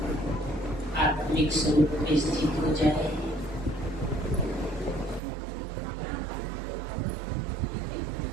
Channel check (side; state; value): left; drops out; at 5.2 s